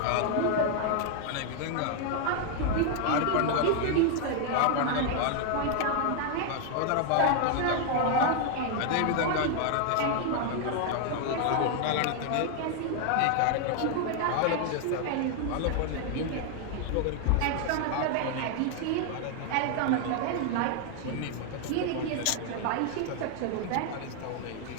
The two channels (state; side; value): different; both; correlation 0.00